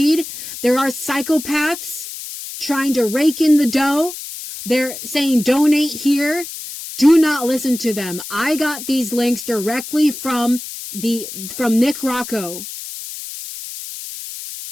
There are psychopaths trying to rake in the dough. They're saying donate here. Do not listen to them. I got these links directly from Nick Rocco,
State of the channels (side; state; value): left; noise; hiss, 10 dB below the sound